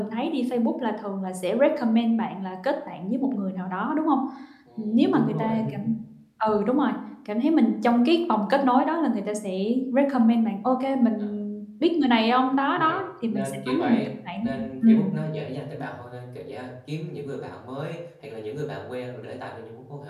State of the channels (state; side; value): identical; both; correlation 1.00